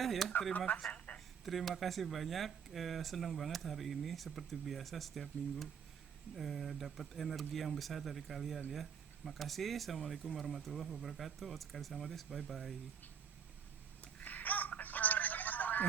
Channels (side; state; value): left; quieter; 7.3 dB